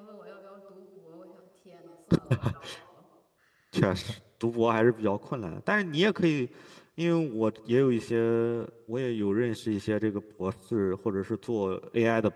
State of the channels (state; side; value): identical; both; correlation 1.00